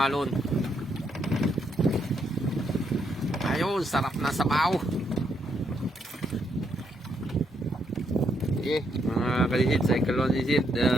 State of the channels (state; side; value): normal; both; correlation 0.76